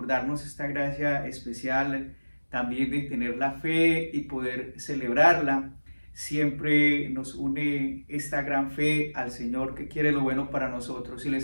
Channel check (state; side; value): inverted; both; correlation -1.00